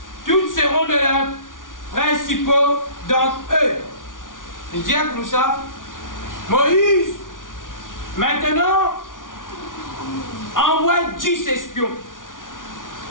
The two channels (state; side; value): late; right; 0.88 ms